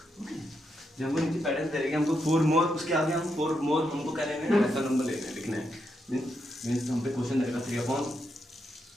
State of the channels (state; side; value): normal; both; correlation 0.82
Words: Okay. जब हमको नीचे pattern दे रहे हैं हमको फोर मोर, उसके आगे हम फोर मोर हमको क्या लेने हैं, रैशनल नंबर लेने हैं, लिखना है. मीन्स हम पे क्वेश्चन रहेगा 3/5